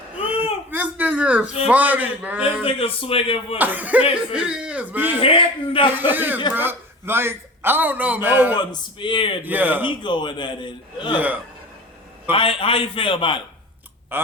This nigga is funny, man. This nigga swinging for the fences. He is, man. He hitting them. He is, bro. Like, I don't know, man. No one's spared, man. Yeah. He going at it. Yeah. How you feel about it?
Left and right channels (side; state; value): both; normal; correlation 0.35